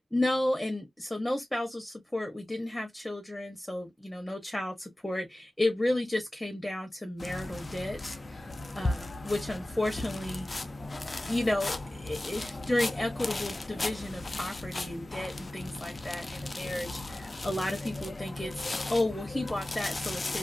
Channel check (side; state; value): both; normal; correlation 0.96